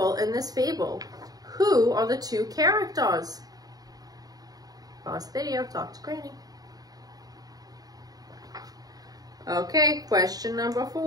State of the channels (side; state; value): left; late; 0.18 ms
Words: in this fable. Who are the 2 characters? Pause the video, talk to Granny. Okay, question number